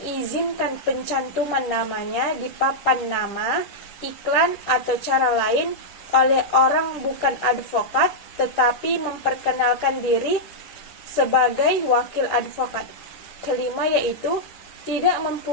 pencantuman namanya di papan nama, iklan, atau cara lain oleh orang bukan advokat, tetapi memperkenalkan diri sebagai wakil advokat. Kelima yaitu tidak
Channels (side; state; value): right; late; 10 ms